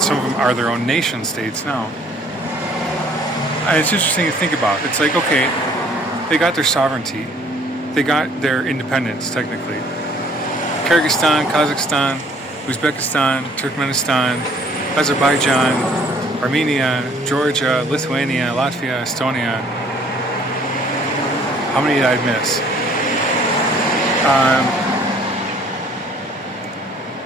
are their own nation states now. And it's interesting to think about. It's like, okay, they got their sovereignty. They got their independence, technically. Kyrgyzstan, Kazakhstan, Uzbekistan, Turkmenistan, Azerbaijan, Armenia, Georgia, Lithuania, Latvia, Estonia. How many did I miss?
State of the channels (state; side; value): normal; both; correlation 0.58